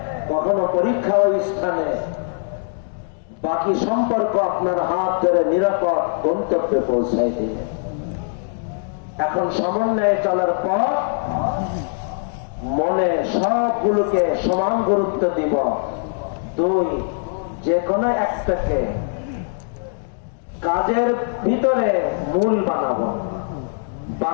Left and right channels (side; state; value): right; silent; digital silence